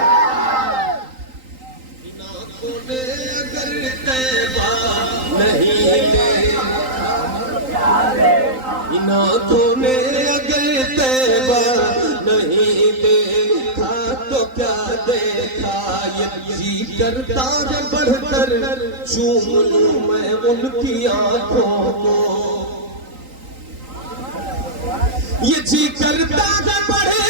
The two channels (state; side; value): late; left; 3.9 ms